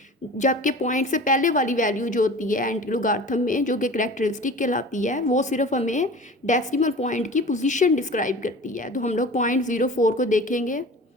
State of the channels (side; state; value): both; normal; correlation 0.39